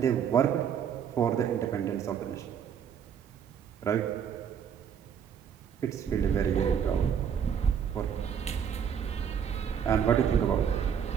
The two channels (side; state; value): left; quieter; 8.0 dB